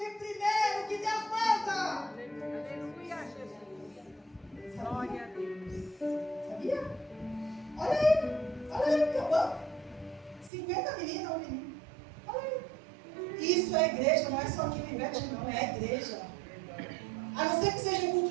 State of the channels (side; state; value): left; drops out; at 10.5 s